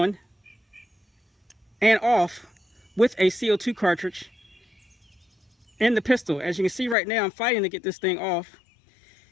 and off with a CO2 cartridge in the pistol. As you can see right now, I'm fighting to get this thing off.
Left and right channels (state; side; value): drops out; right; at 7.0 s